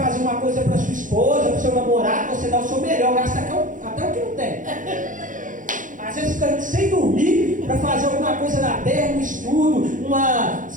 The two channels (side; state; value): left; late; 0.38 ms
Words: uma coisa para sua esposa, para o seu namorado, você dá o seu melhor, gasta até o que não tem. Às vezes fica sem dormir para fazer alguma coisa na terra, um estudo, uma